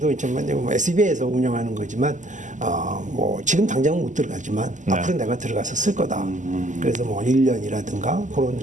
있지만 SBA에서 운영하는 거지만 뭐 지금 당장은 못 들어가지만 네. 앞으로 내가 들어가서 쓸 거다. 그래서 뭐 1년이라든가 그런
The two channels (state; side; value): late; left; 0.36 ms